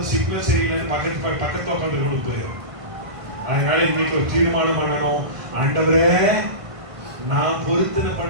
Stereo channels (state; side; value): late; left; 1.5 ms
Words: சிக்னல் சரியில்லைன்னு பக்கத்துல உட்காந்து கொண்டு போயிடும். அதனால இன்னைக்கு ஒரு தீர்மானம் பண்ணணும், ஆண்டவரே நான் பொருத்தனை